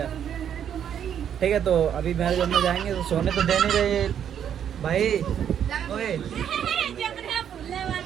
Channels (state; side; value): quieter; left; 9.1 dB